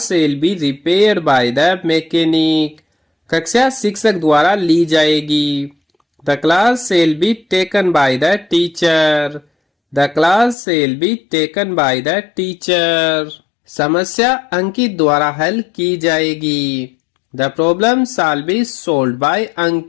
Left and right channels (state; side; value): drops out; right; at 10.6 s